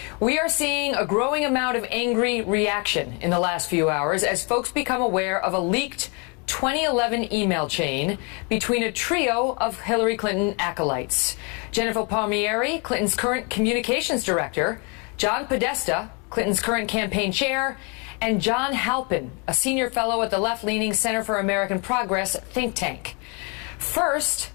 We are seeing a growing amount of angry reaction in the last few hours as folks become aware of a leaked 2011 email chain between a trio of Hillary Clinton acolytes. Jennifer Palmieri, Clinton's current communications director, John Podesta, Clinton's current campaign chair, and John Halpin, a senior fellow at the left-leaning Center for American Progress think tank. First,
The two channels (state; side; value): quieter; right; 33.6 dB